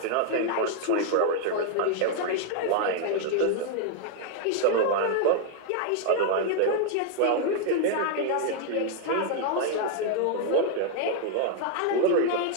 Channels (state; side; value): different; both; correlation 0.00